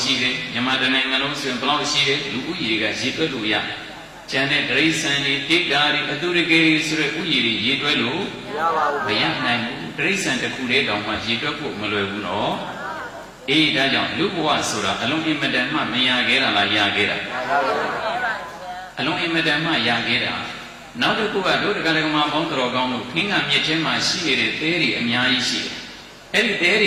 ရှိတယ်မြန်မာနိုင်ငံလုံးဆိုရင်ဘယ်လောက်ရှိတယ်လူဦးရေကရည်တွက်လို့ရကျန်တဲ့ဒရိစံတွေတိတ်တာတွေအတုရကေဆိုတဲ့ဥယျာဉ်တွေရည်တွက်လို့မရပါဘူးမရနိုင်ဘူးဒရိစံတစ်ခုလေးတောင်မှရည်တွက်ဖို့မလွယ်ဘူးနော်အေးဒါကြောင့်လူဘဝဆိုတာအလုံးအင်မတန်မှမရခဲ့တာလားရခဲ့တာအလုံးအင်မတန်မှရခဲ့တာနောက်တစ်ခုကတို့တက္ကရာကမပေါင်းတော်ကောင်းလို့ခင်းကမြစ်ချင်းမှာရှိနေတဲ့သဲတွေအများကြီးရှိတယ်အဲ့ဒီသဲတွ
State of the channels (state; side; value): identical; both; correlation 1.00